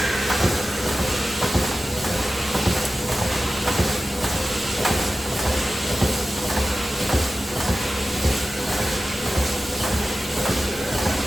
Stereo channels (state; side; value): normal; both; correlation 0.94